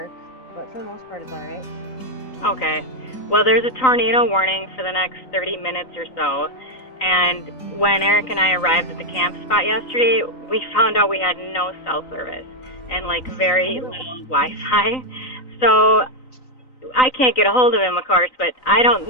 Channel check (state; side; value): late; right; 3.9 ms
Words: but for the most part, it's all right. Okay. Well, there's a tornado warning for the next 30 minutes or so. And when Eric and I arrived at the camp spot yesterday, we found out we had no cell service and like very little Wi-Fi. So I can't get a hold of him, of course, but I don't